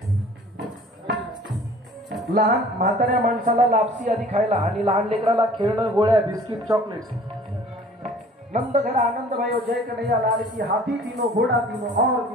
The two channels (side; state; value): both; normal; correlation 0.50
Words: लहान म्हाताऱ्या माणसाला लापसी आधी खायला आणि लहान लेकराला खेळणं, गोळ्या, बिस्किट, चॉकलेट्स. नंद घर आनंद भयो जय कन्हैया लाल की. हाथी तीनों, घोड़ा तीनों और